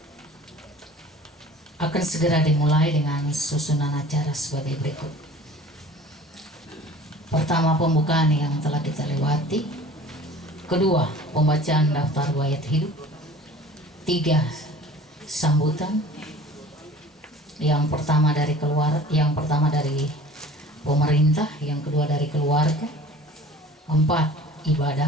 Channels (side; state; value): both; normal; correlation 0.45